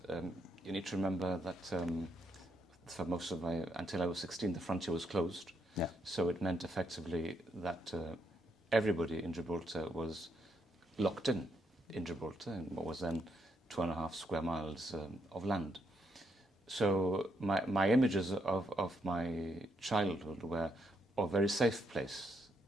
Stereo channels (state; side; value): normal; both; correlation 0.77